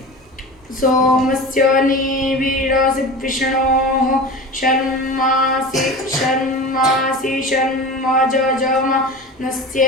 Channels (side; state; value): both; normal; correlation 0.32